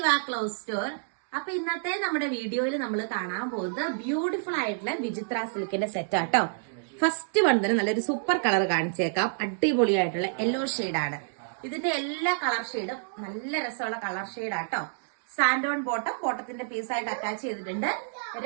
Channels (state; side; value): silent; left; digital silence